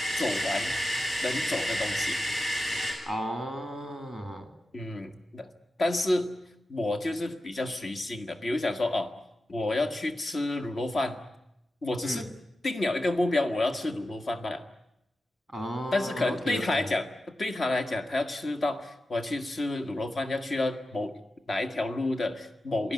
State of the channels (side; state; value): both; normal; correlation 0.92